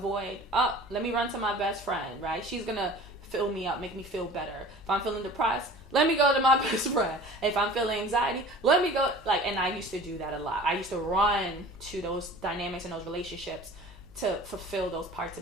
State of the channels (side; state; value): left; noise; hum, 20 dB below the sound